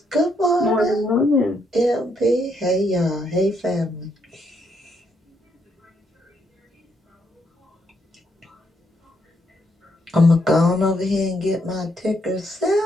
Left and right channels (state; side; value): normal; both; correlation 0.75